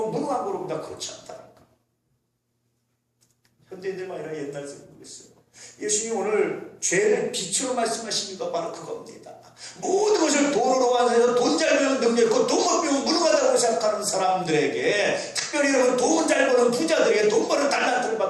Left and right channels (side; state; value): both; identical; correlation 1.00